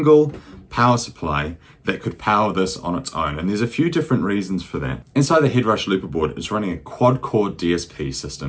power supply that could power this on its own, and there's a few different reasons for that. Inside the Headrush Looperboard, it's running a quad-core DSP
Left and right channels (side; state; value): both; identical; correlation 1.00